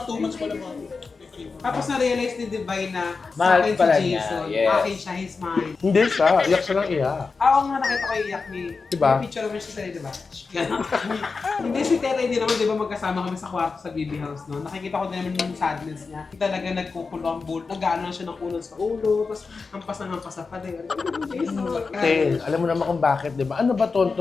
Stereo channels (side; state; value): right; quieter; 4.5 dB